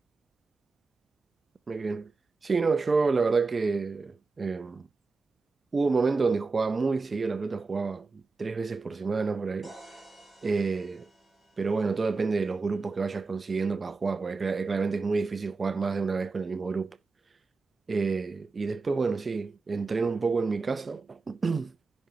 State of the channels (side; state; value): left; quieter; 4.0 dB